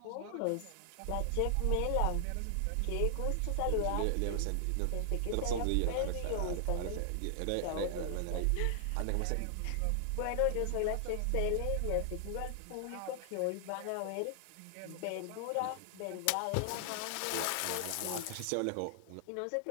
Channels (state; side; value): different; both; correlation 0.00